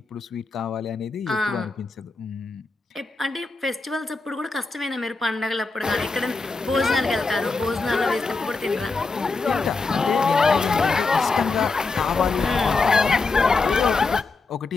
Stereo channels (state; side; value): quieter; right; 3.9 dB